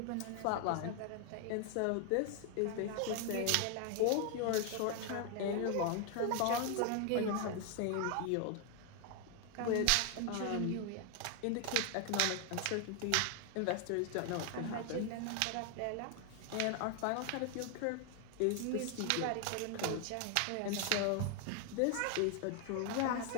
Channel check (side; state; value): both; different; correlation 0.00